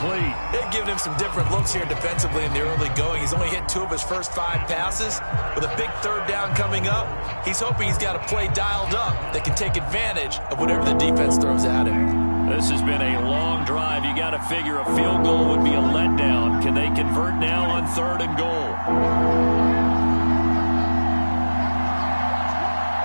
They've given him some different looks here defensively in the early going. He's only hit 2 of his first 5 passes. With a big third down coming up, he's hoping he's got a play dialed up that can take advantage of whatever the defense throws at him. This has been a long drive. You got to figure a field goal would be a letdown. Can they convert now on 3rd and goal?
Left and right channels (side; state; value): both; inverted; correlation -1.00